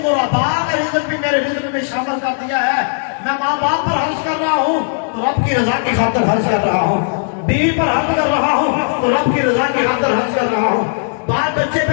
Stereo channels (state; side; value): silent; right; digital silence